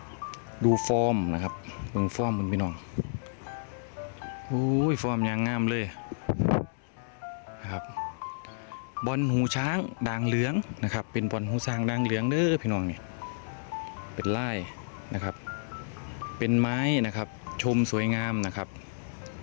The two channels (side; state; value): right; silent; digital silence